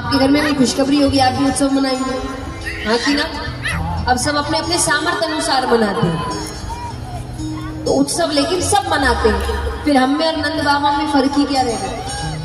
घर में भी खुशखबरी होगी, आप भी उत्सव मनाएंगे, हाँ कि ना। अब सब अपने अपने सामर्थ्य अनुसार मनाते हैं, तो उत्सव लेकिन सब मनाते हैं। फिर हम में और नंद बाबा में फर्क ही क्या रहेगा।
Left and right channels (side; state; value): both; identical; correlation 1.00